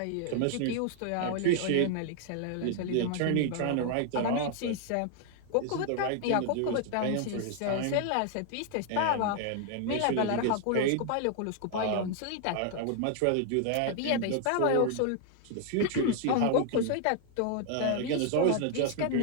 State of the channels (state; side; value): different; both; correlation 0.00